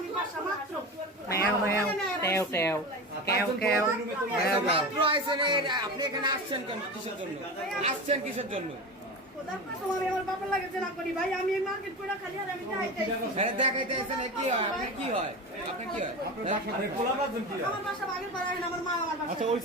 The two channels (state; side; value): normal; both; correlation 0.27